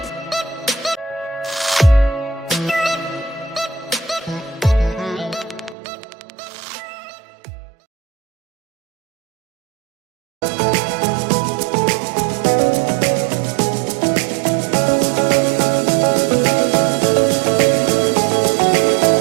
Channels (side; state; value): left; drops out; at 5.8 s